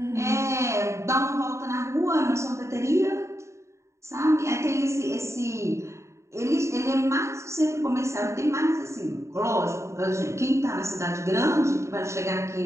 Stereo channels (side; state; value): left; late; 0.14 ms